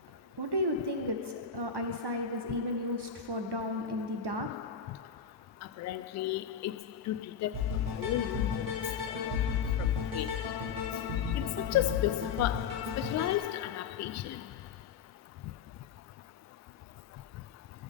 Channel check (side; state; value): right; quieter; 6.6 dB